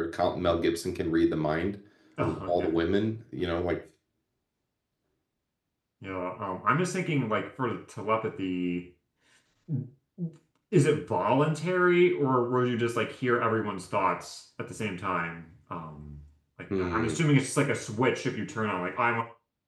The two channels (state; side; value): identical; both; correlation 1.00